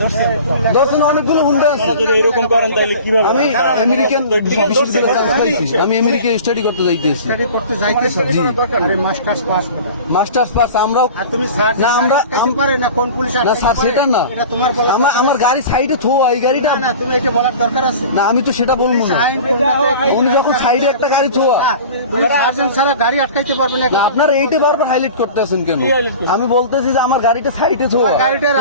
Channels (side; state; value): both; inverted; correlation -0.39